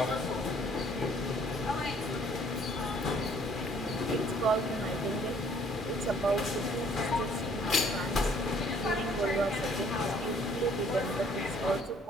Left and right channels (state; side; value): normal; both; correlation 0.60